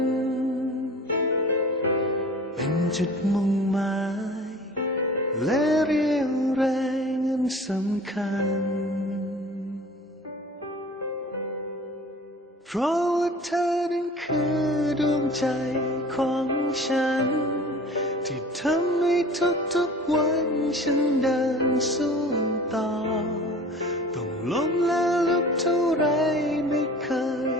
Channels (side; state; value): both; normal; correlation 0.42